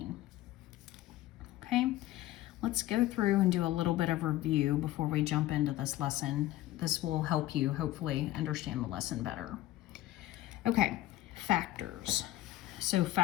Okay, let's go through and do a little bit of review before we jump into this lesson. This will help you hopefully understand the lesson better. Okay, factors. So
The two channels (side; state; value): right; quieter; 15.4 dB